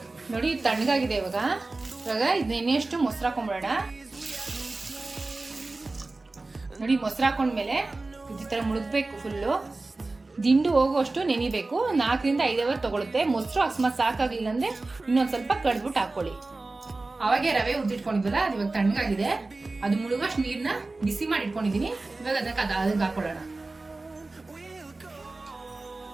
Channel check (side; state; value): left; quieter; 3.3 dB